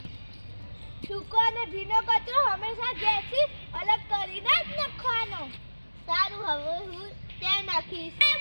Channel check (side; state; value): both; inverted; correlation -1.00